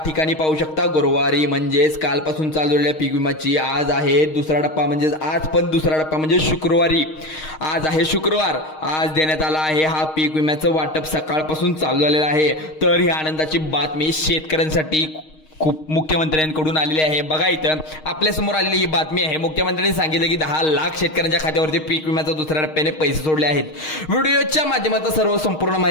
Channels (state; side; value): late; right; 6.4 ms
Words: ठिकाणी पाहू शकता गुरुवारी म्हणजेच कालपासून चालू झालेल्या पीक विमाची आज आहे दुसरा टप्पा, म्हणजेच आज पण दुसरा टप्पा म्हणजे शुक्रवारी। आज आहे शुक्रवार, आज देण्यात आला आहे हा पीक विम्याचं वाटप सकाळपासून चालू झालेलं आहे। तर ही आनंदाची बातमी शेतकऱ्यांसाठी खूप मुख्यमंत्र्यांकडून आलेली आहे। बघा इथं आपल्या समोर आलेली ही बातमी आहे। मुख्यमंत्र्यांनी सांगितलं की 10 लाख शेतकऱ्यांच्या खात्यावरती पीक विम्याचा दुसऱ्या टप्प्याने पैसे सोडले आहेत। व्हिडिओच्या माध्यमातून सर्व संपूर्ण